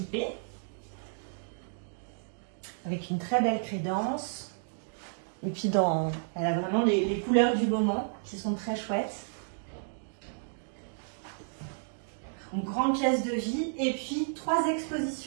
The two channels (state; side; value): silent; left; digital silence